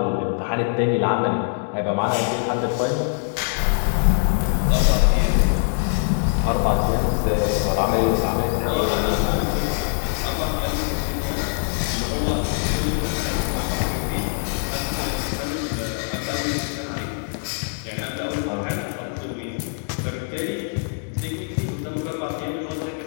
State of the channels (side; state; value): right; silent; digital silence